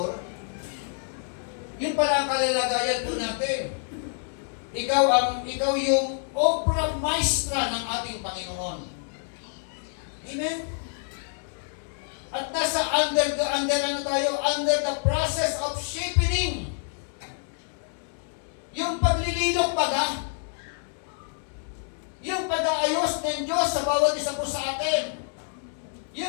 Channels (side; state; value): right; silent; 60 dB below the other